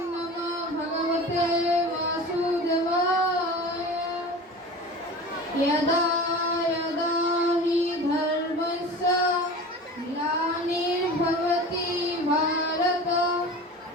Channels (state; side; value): normal; both; correlation 0.35